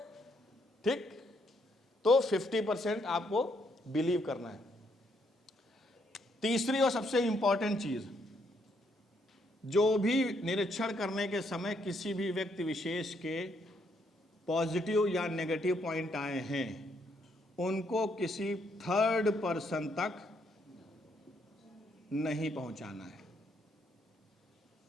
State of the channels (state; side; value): normal; both; correlation 0.73